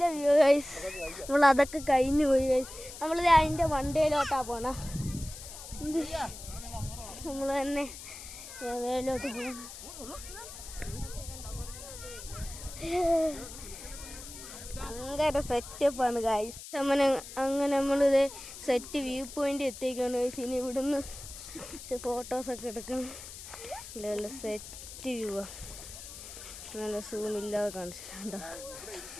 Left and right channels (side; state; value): left; noise; hiss, 13 dB below the sound